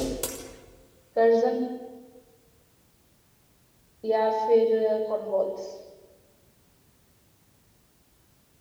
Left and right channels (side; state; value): both; identical; correlation 1.00